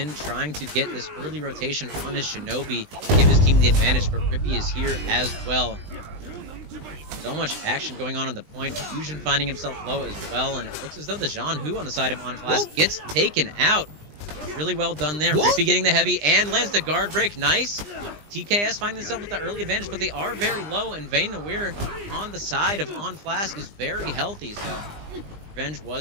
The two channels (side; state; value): left; late; 20 ms